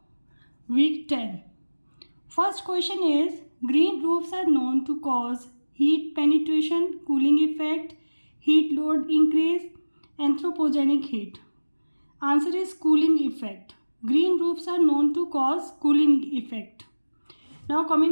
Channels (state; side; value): inverted; both; correlation -1.00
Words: week 10. First question is, green roofs are known to cause heat penetration, cooling effect, heat load increase, anthropogenic heat. Answer is cooling effect. Green roofs are known to cause cooling effect. Now